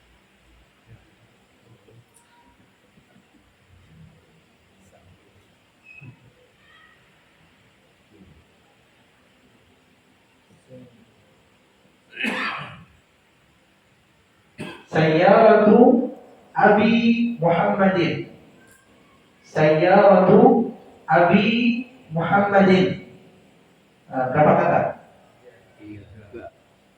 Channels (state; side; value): identical; both; correlation 1.00